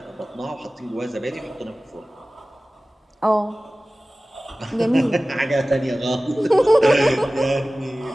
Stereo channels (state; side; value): normal; both; correlation 0.97